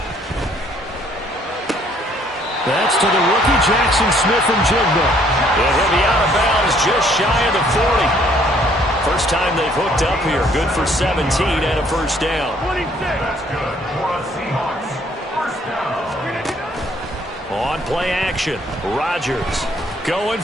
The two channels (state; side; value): normal; both; correlation 0.63